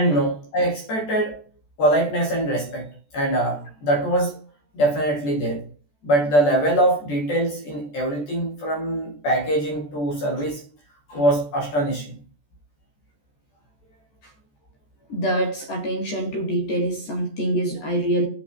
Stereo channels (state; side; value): late; right; 14 ms